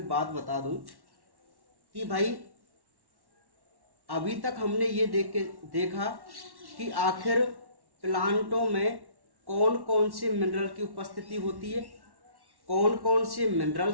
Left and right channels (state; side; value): late; left; 1.1 ms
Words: बात बता दूं कि भाई अभी तक हमने ये देखा कि आखिर प्लांटों में कौन कौन से मिनरल की उपस्थिति होती है, कौन कौन से